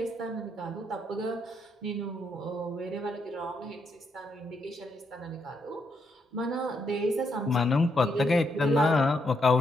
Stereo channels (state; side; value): normal; both; correlation 0.78